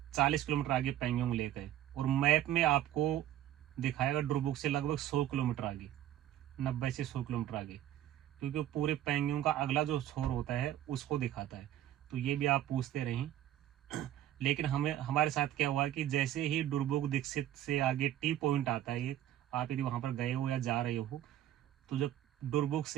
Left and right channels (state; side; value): quieter; left; 12.3 dB